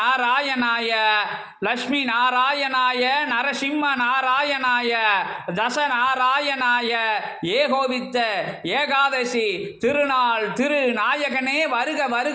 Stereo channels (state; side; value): identical; both; correlation 1.00